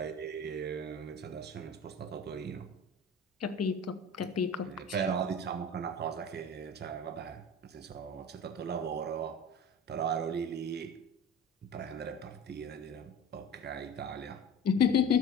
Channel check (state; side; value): normal; both; correlation 0.35